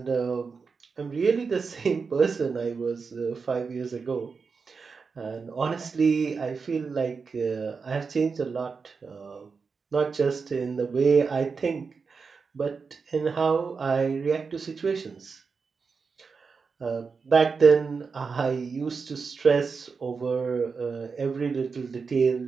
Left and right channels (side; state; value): left; quieter; 5.1 dB